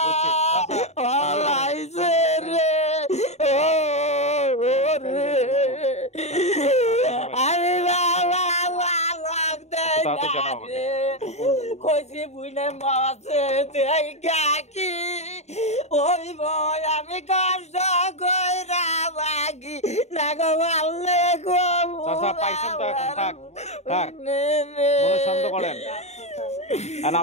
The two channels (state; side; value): late; right; 0.32 ms